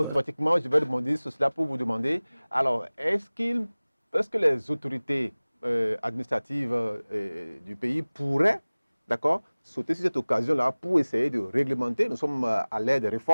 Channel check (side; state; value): both; inverted; correlation -1.00